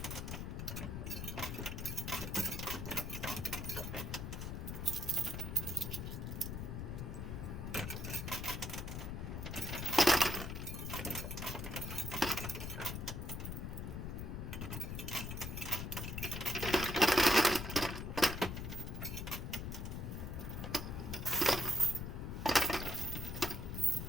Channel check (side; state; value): left; noise; rumble, 5 dB below the sound